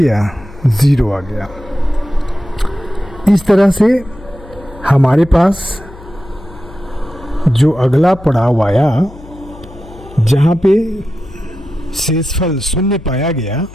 0 आ गया। इस तरह से हमारे पास जो अगला पड़ाव आया, जहाँ पे शेषफल 0 पाया गया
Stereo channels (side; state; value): left; noise; hum, 19 dB below the sound